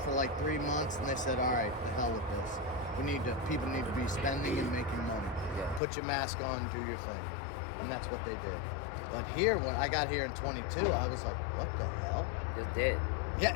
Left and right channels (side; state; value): right; drops out; at 5.8 s